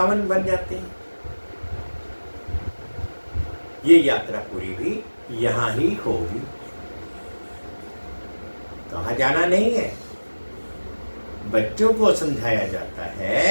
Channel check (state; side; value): inverted; both; correlation -1.00